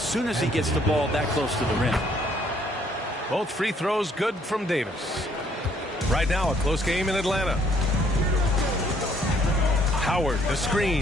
as he gets the ball that close to the rim. Both free throws good from Davis. Right now, a close game in Atlanta. Howard, the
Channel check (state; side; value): normal; both; correlation 0.65